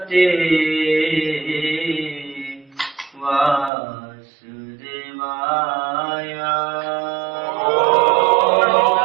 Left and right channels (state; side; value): drops out; left; at 3.7 s